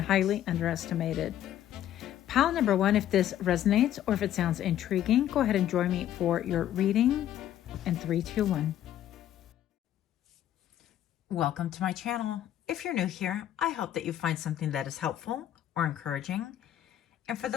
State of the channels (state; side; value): quieter; right; 11.6 dB